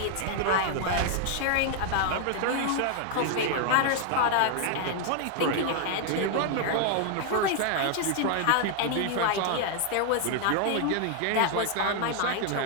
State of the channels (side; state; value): both; different; correlation 0.00